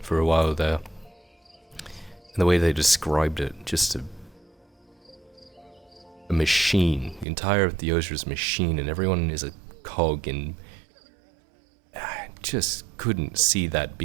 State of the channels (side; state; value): left; drops out; at 7.2 s